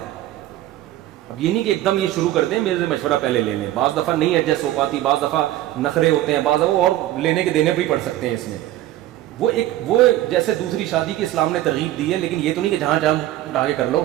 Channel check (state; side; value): quieter; left; 14.5 dB